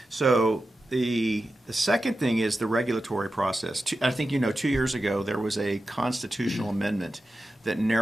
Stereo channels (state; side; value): normal; both; correlation 0.92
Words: So the second thing is the regulatory process. I think 2 years ago there was a constitutional amendment that